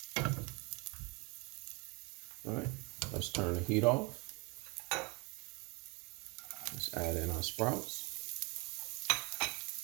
All right, let's turn the heat off. Let's add in our sprouts.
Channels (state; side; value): quieter; left; 29.1 dB